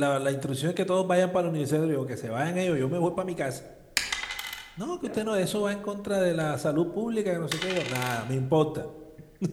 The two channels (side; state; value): both; identical; correlation 1.00